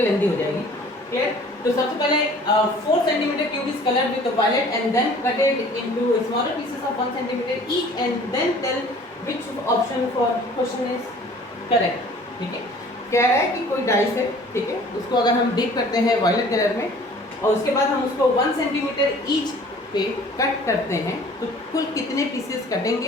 लेंदी हो जाएगी। क्लियर? तो सबसे पहले 4 centimetre cube is coloured with violet and then cutted into smaller pieces of 1 centimetre each and then tell which option for question is correct. ठीक है, कह रहा है कि कोई डाइस है, ठीक है, उसको अगर हम डिप करते हैं वायलेट कलर में और उसके बाद हम उसको 1 सेंटीमीटर ईच पे कट करते हैं तो कुल कितने पीसेस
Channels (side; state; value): both; normal; correlation 0.50